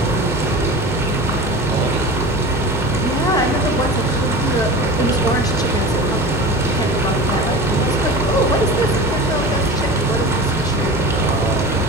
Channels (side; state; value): both; normal; correlation 0.33